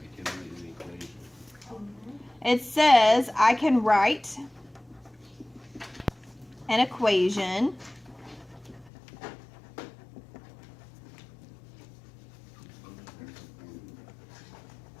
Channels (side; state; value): right; drops out; at 8.9 s